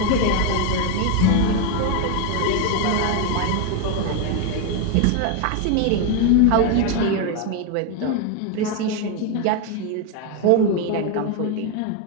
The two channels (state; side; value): different; both; correlation 0.01